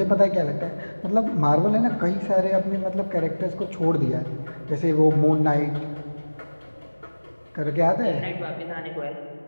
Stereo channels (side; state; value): both; inverted; correlation -1.00